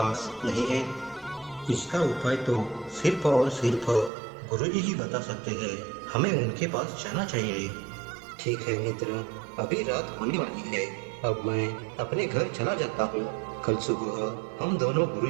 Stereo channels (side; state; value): left; drops out; at 4.1 s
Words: नहीं है? इसका उपाय तो सिर्फ और सिर्फ गुरुजी ही बता सकते हैं। हमें उनके पास जाना चाहिए। ठीक है मित्र, अभी रात होने वाली है। अब मैं अपने घर चला जाता हूँ। कल सुबह हम दोनों